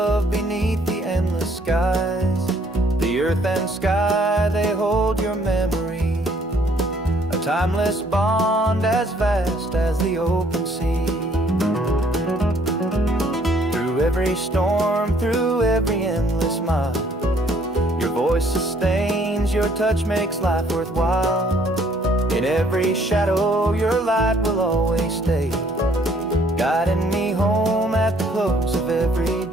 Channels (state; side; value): normal; both; correlation 0.63